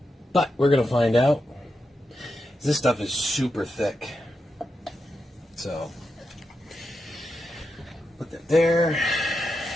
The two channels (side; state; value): both; normal; correlation 0.87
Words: But we're going to find out. This stuff is super thick. So, put that there.